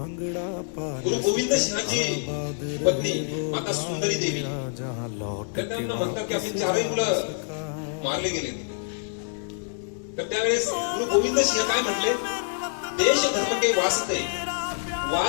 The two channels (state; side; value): silent; right; digital silence